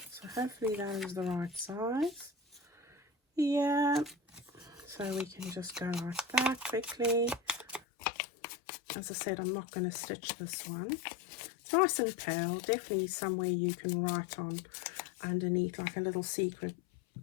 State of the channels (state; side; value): drops out; right; at 7.8 s